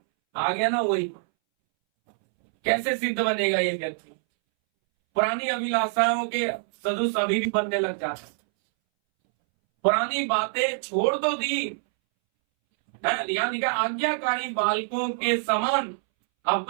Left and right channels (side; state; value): left; silent; 62 dB below the other